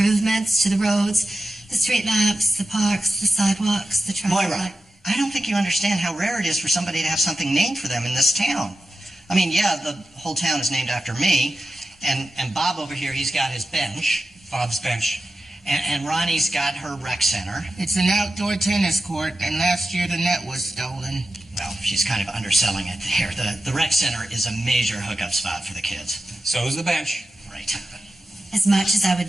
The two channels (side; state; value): both; normal; correlation 0.93